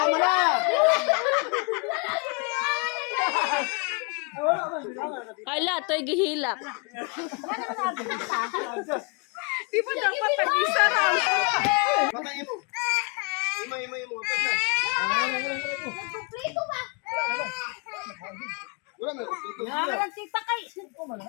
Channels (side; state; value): right; quieter; 34.1 dB